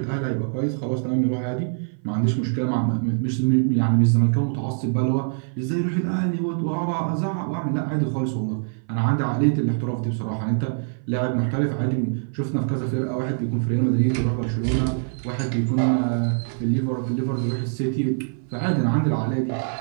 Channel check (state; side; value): silent; left; 57 dB below the other